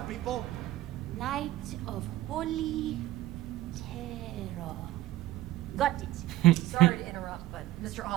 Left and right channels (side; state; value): left; quieter; 15.4 dB